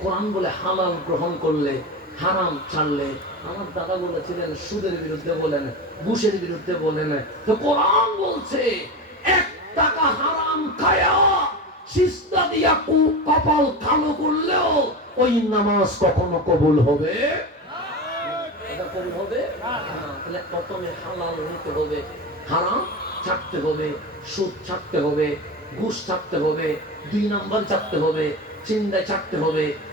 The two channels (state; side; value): normal; both; correlation 0.24